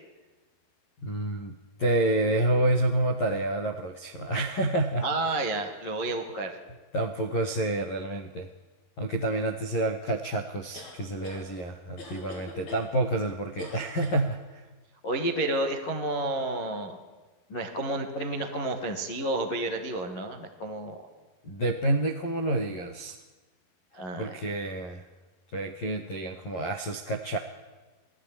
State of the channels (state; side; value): late; right; 11 ms